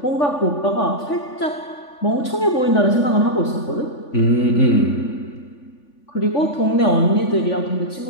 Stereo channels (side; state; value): right; late; 3.5 ms